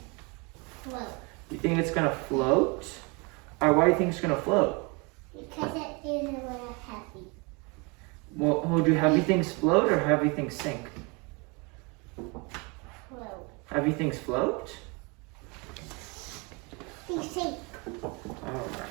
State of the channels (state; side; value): quieter; left; 29.8 dB